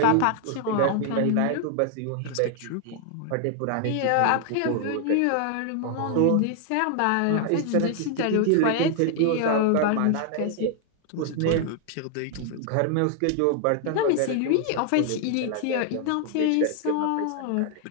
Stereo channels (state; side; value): different; both; correlation 0.00